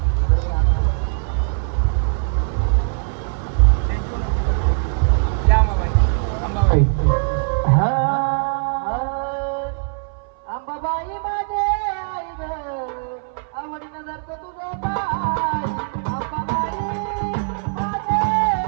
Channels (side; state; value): left; silent; 61 dB below the other